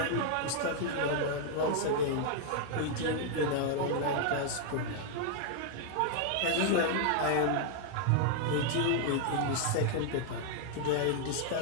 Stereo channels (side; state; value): both; different; correlation 0.00